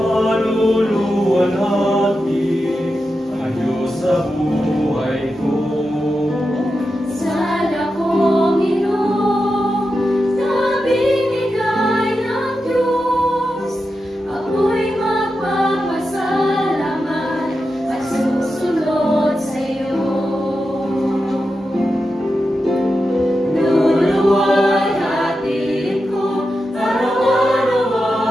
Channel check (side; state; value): both; normal; correlation 0.89